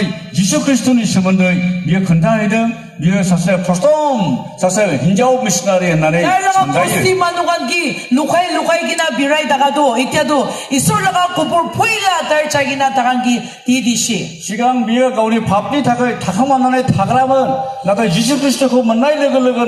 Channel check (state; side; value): identical; both; correlation 1.00